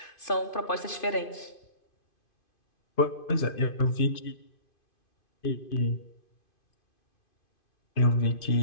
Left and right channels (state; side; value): late; right; 2.5 ms